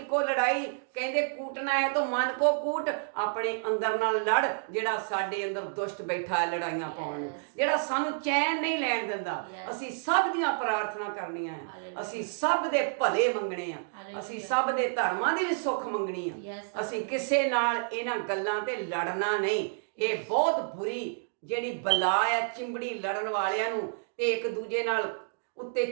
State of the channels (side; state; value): left; silent; digital silence